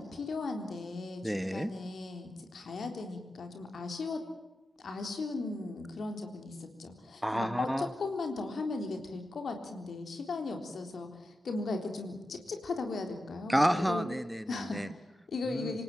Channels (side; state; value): both; normal; correlation 0.91